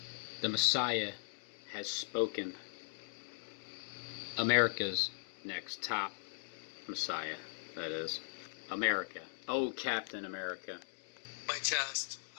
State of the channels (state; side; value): silent; right; digital silence